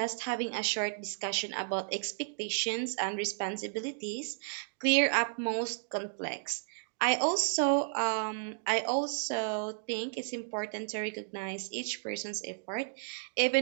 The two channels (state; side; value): silent; left; digital silence